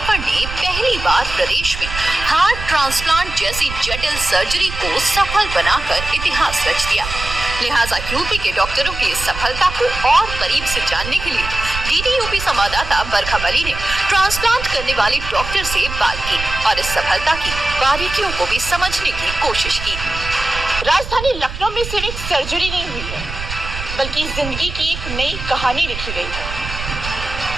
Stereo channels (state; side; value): noise; right; rumble, 8 dB below the sound